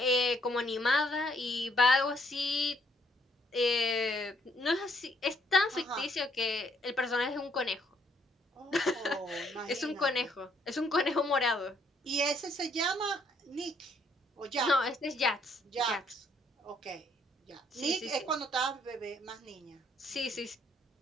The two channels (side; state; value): both; normal; correlation 0.68